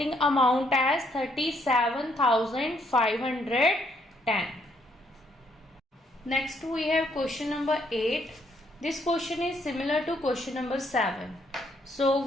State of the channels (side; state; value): both; normal; correlation 0.71